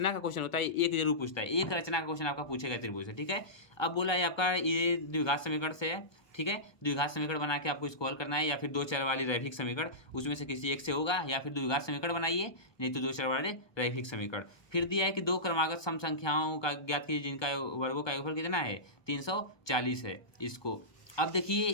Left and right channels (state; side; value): late; right; 1.2 ms